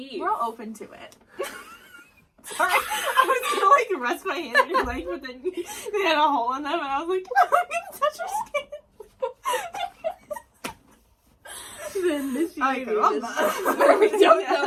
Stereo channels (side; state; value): both; identical; correlation 1.00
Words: We're all open to it. Sorry, I was gonna, like, rest my hand on your leg, but then they had a hole in them, and I was like, I'm gonna touch your skin. The initiator I love is that. where we don't Yeah. know